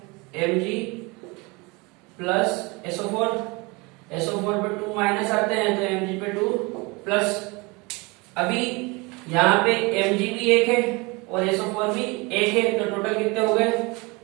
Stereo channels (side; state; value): left; quieter; 26.4 dB